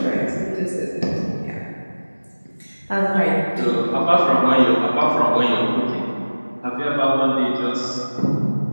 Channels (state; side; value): inverted; both; correlation -1.00